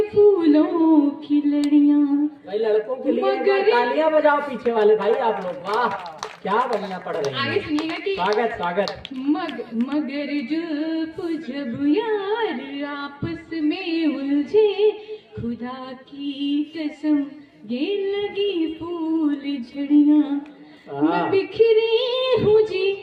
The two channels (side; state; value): both; identical; correlation 1.00